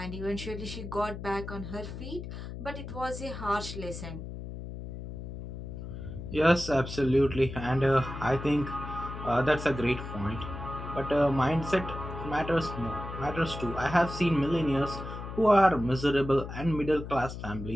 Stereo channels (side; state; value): left; noise; hum, 9 dB below the sound